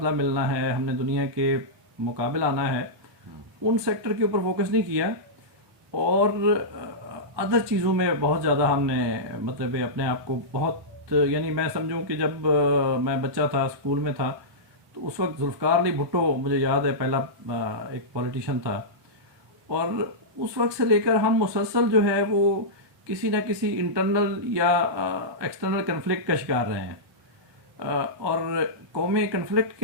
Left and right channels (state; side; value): late; left; 1.2 ms